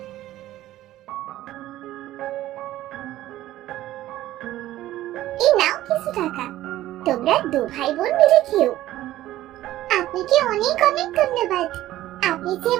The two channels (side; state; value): left; quieter; 14.6 dB